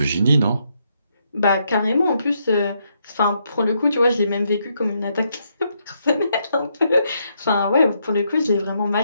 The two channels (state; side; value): inverted; both; correlation -0.77